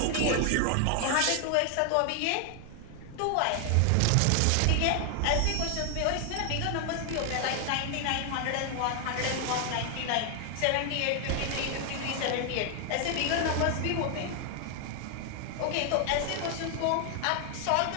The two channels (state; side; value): different; both; correlation 0.00